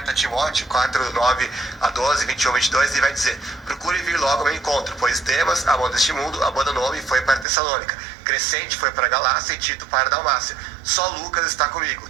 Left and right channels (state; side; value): drops out; left; at 7.5 s